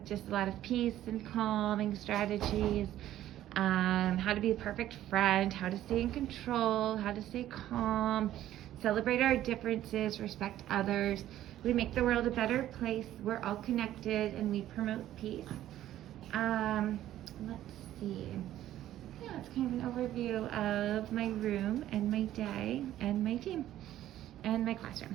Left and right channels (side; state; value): left; quieter; 13.0 dB